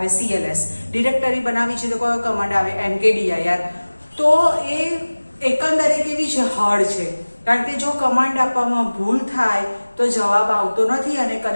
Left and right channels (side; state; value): both; inverted; correlation -1.00